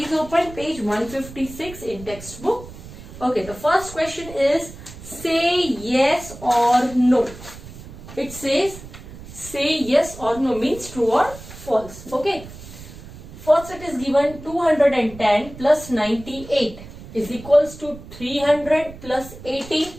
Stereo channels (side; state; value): right; noise; rumble, 15 dB below the sound